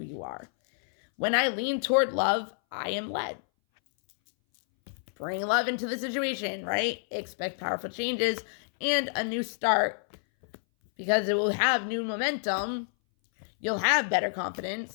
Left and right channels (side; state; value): right; silent; 59 dB below the other